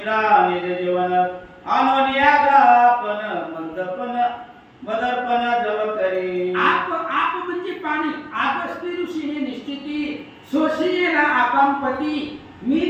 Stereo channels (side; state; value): both; identical; correlation 1.00